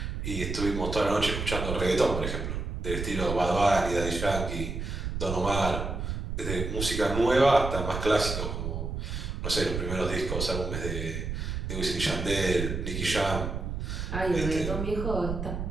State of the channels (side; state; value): right; noise; rumble, 4 dB below the sound